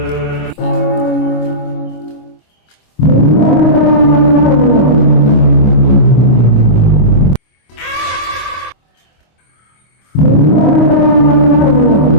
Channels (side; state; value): right; late; 25 ms